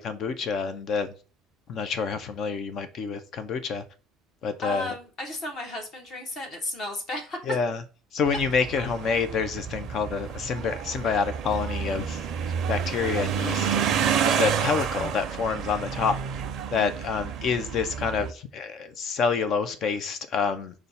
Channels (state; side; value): normal; both; correlation 0.48